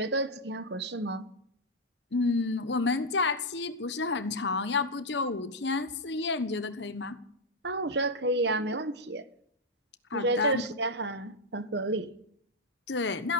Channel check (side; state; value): both; normal; correlation -0.01